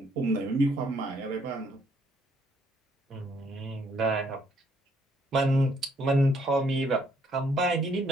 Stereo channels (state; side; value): normal; both; correlation 0.68